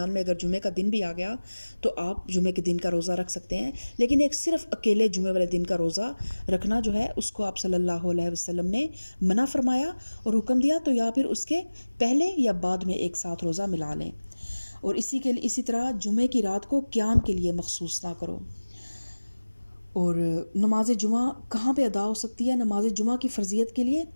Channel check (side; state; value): both; inverted; correlation -1.00